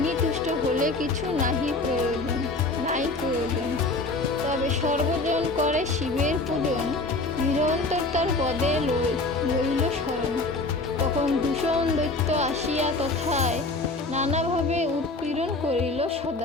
তুষ্ট হলে কিছু নাই প্রয়োজন। তবে সর্বজন করে শিবের পূজন, নিরন্তর তার পদে লইল শরণ। তখন দূষণ দৈত্য আসিয়া তথায়, নানাভাবে উৎপীড়ন করিল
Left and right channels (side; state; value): right; quieter; 3.3 dB